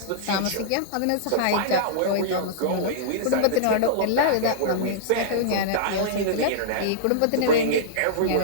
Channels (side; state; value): both; different; correlation -0.02